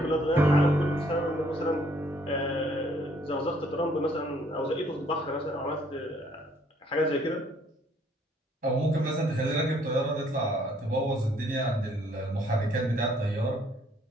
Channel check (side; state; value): both; normal; correlation 0.64